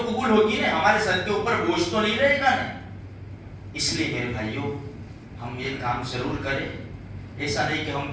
قبول ہوگی نا، ہمارے سر کے اوپر بوجھ تو نہیں رہے گا نا۔ اس لیے میرے بھائیوں ہم یہ کام ضرور کریں، ایسا نہیں کہ ہم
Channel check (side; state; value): both; identical; correlation 1.00